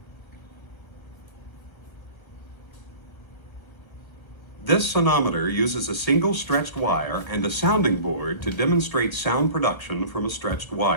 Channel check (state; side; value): late; right; 1.5 ms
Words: This sonometer uses a single stretched wire and a sounding board to demonstrate sound production from a stretched